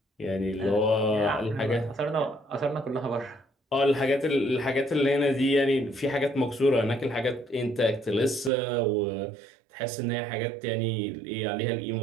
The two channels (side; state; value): left; drops out; at 8.5 s